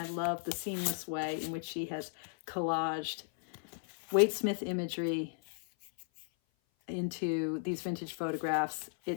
love the seamless way in which she has collaged Waite Smith imagery into these vintage photographs.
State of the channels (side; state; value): right; silent; 54 dB below the other